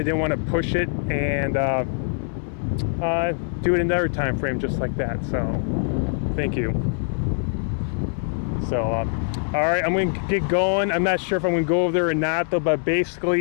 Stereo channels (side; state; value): right; silent; 63 dB below the other